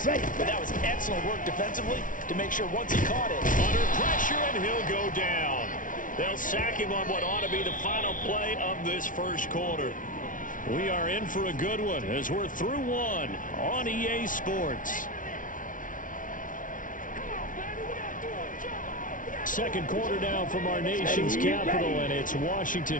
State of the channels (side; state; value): right; late; 0.38 ms